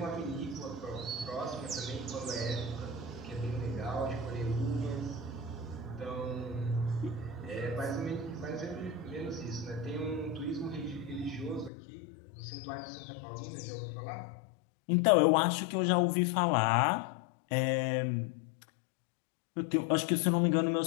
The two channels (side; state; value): right; drops out; at 11.7 s